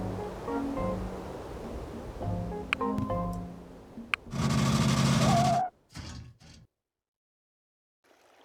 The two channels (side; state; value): both; identical; correlation 1.00